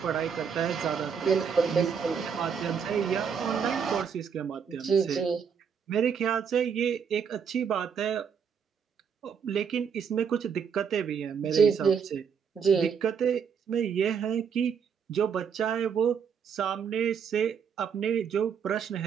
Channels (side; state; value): left; quieter; 6.8 dB